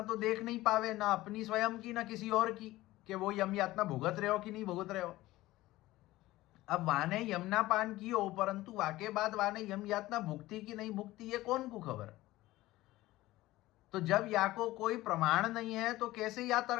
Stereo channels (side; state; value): right; quieter; 17.4 dB